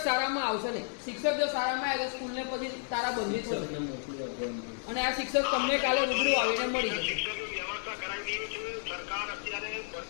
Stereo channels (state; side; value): silent; right; digital silence